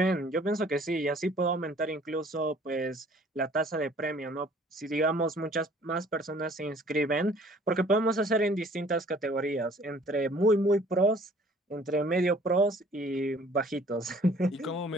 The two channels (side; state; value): both; normal; correlation 0.55